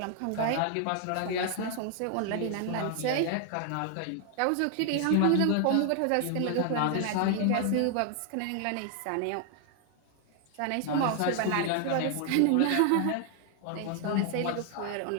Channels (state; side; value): different; both; correlation 0.00